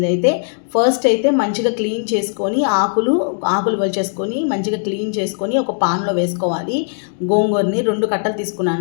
ఫస్ట్ అయితే మంచిగా క్లీన్ చేసుకొని ఆకులు వలిచేసుకొని మంచిగా క్లీన్ చేసుకొని ఒక పాన్లో వేసుకోవాలి. గోంగూరని 2 కట్టలు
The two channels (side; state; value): right; silent; 67 dB below the other